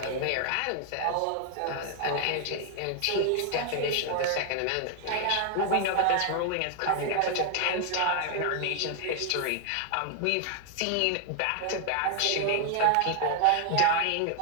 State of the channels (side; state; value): both; different; correlation 0.00